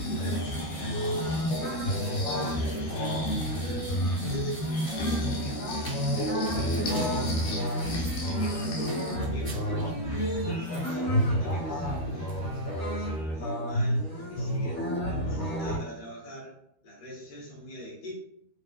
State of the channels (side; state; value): right; late; 13 ms